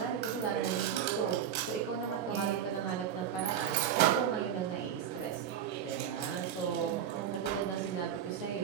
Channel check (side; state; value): left; quieter; 9.2 dB